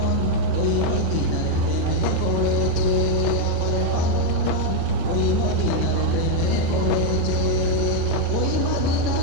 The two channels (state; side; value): different; both; correlation 0.01